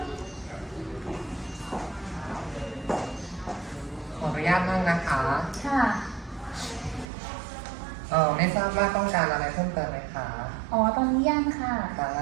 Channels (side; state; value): left; drops out; at 7.1 s